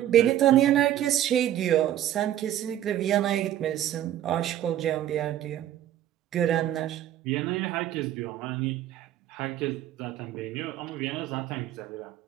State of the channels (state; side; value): quieter; left; 12.0 dB